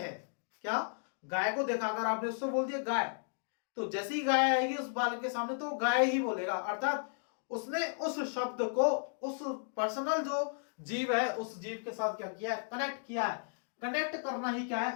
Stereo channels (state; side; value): silent; right; digital silence